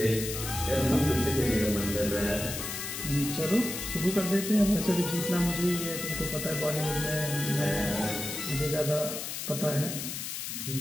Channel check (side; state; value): left; noise; hiss, 5 dB below the sound